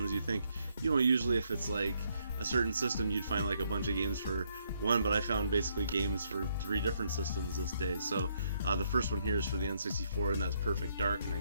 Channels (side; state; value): both; inverted; correlation -0.72